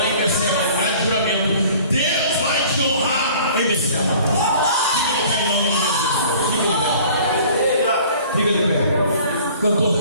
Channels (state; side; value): inverted; both; correlation -0.49